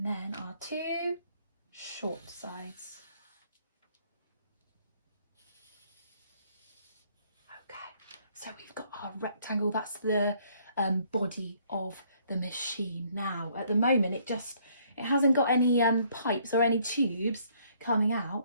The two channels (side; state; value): both; inverted; correlation -0.65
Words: then our 2 short sides. Okay, so we've got our rectangle. That's the body of the machine. Now, at the moment, it hasn't got any pipes or any tubes coming out